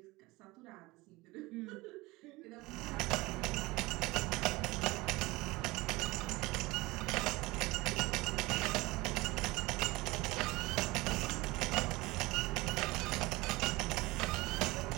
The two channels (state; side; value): quieter; left; 21.6 dB